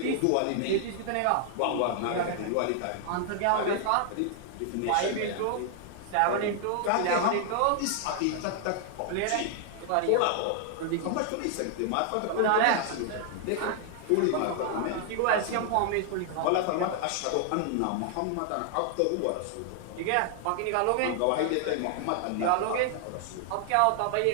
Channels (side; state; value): both; different; correlation 0.00